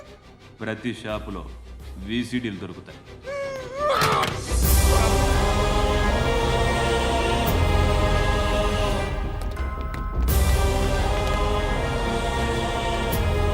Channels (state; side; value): identical; both; correlation 1.00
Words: ప్రతి షాపులో వీసీడీలు దొరుకుతాయి.